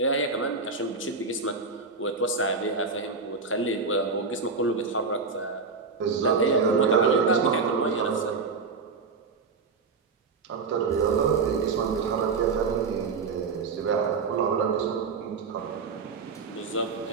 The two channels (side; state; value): left; quieter; 4.7 dB